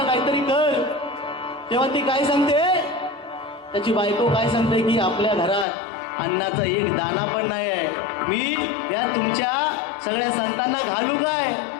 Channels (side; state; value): right; drops out; at 5.7 s